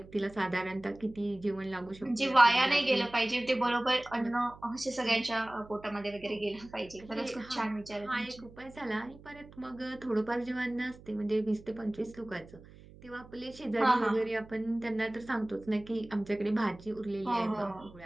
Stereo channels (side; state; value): right; noise; hum, 20 dB below the sound